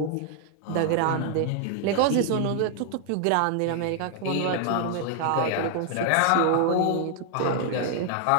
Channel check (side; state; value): both; different; correlation 0.00